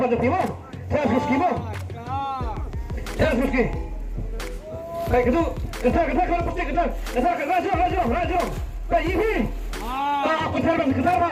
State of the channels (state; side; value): identical; both; correlation 1.00